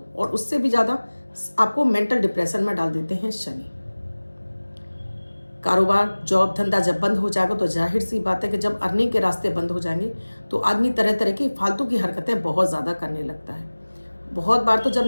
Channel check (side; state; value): both; inverted; correlation -1.00